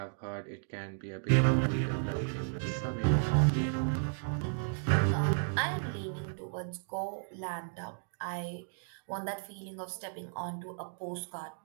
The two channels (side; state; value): left; silent; digital silence